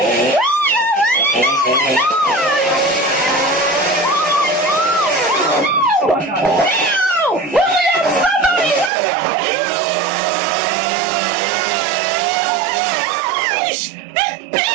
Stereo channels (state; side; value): drops out; left; at 8.9 s